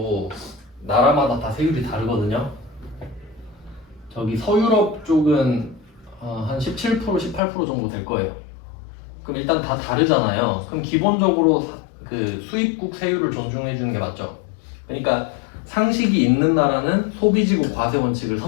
나라마다 다 세율이 다르거든요. 저기 서유럽 쪽은 한 17%, 18% 정도 될 거예요. 그럼 일단 다 다르잖아요. 그럼 기본적으로 그 수입국 세율을 존중해 주는 게 맞죠. 그러니까 상식이 있는 나라는 소비지국 과세 원칙을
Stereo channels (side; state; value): right; drops out; at 7.4 s